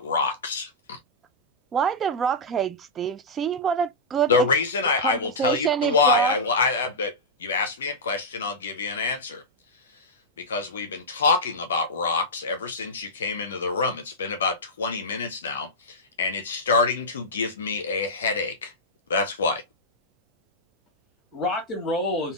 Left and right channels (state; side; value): normal; both; correlation -0.10